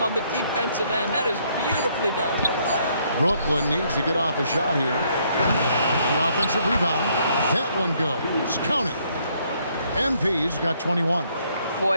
on the defensive end. That is beautifully done. Brooklyn needs to get off a shot here. The offensive rebound. That one goes. Count it. MP's got 21.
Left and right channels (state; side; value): inverted; both; correlation -0.69